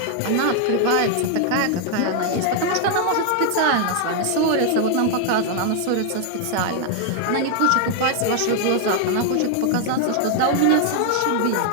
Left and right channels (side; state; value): both; different; correlation 0.00